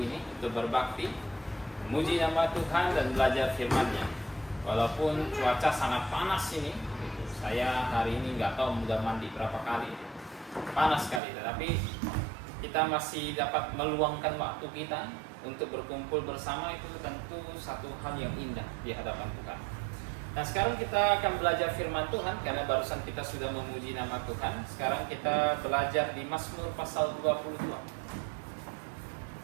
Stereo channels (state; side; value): drops out; left; at 11.2 s